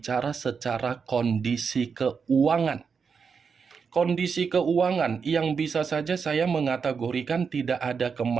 secara kondisi keuangan. Kondisi keuangan yang bisa saja saya mengategorikan tidak ada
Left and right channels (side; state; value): left; quieter; 5.8 dB